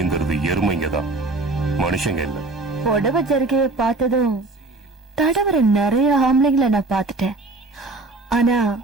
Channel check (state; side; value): quieter; left; 3.2 dB